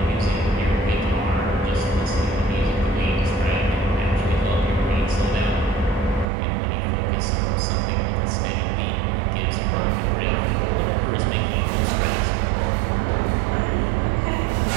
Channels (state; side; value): drops out; left; at 6.2 s